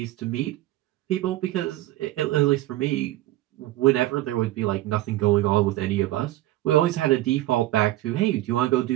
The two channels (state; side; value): quieter; left; 16.0 dB